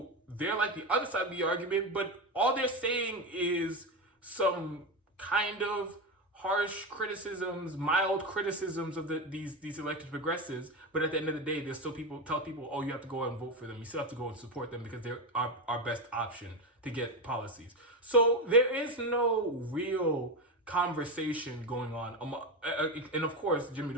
they're like the other side of the argument, but all they're saying is some kind of harsh criticisms, mild criticisms of these elected progressives, but at the end of the day, there's still tell people, oh, you have to go out and vote for them. You still have to go and support them because they're our best option to get policies. So there is no real conversation going on. And of course, Jimmy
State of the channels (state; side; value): normal; both; correlation 0.16